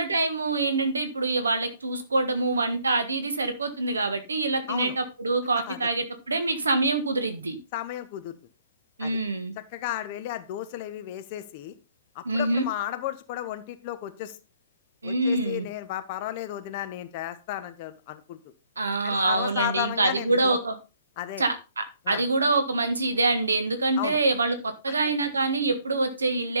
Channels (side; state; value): both; inverted; correlation -0.67